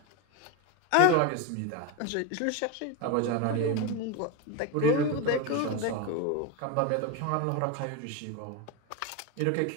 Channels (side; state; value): both; different; correlation 0.03